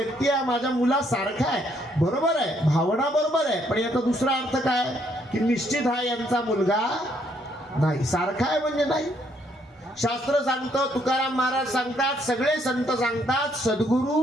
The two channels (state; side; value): normal; both; correlation 0.70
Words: हा माझ्या मुलासारखा आहे, बरोबर आहे, भावना बरोबर आहे, पण याचा दुसरा अर्थ काय की निश्चित हा यांचा मुलगा नाही. सारखा आहे म्हणजे नाही. शास्त्र सांगतं, तुकाराम महाराज सांगतात, सगळे संत सांगतात, सद्गुरू